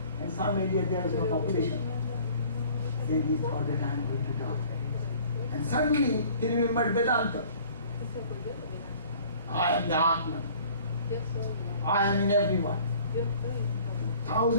and some area there is no population. Then he thought that I am going to die. And suddenly he remembered Vedanta. I am the Atman. I am in everyone.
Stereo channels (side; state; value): both; inverted; correlation -0.51